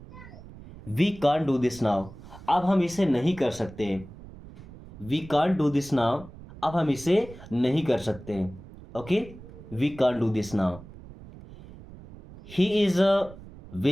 We can't do this now, अब हम इसे नहीं कर सकते। We can't do this now, अब हम इसे नहीं कर सकते। Okay. We can't do this now. He is a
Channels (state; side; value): noise; right; rumble, 17 dB below the sound